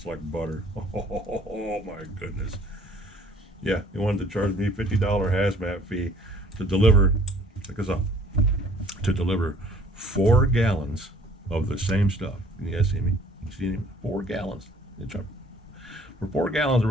like butter. Oh my goodness. Yeah, they wanted to charge me $50 hazmat fee to deliver, check this out, to deliver 4 gallons of the same stuff. Can you guys see me? You see me? 4 gallons. For 4 gallons,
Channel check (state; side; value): normal; both; correlation 0.55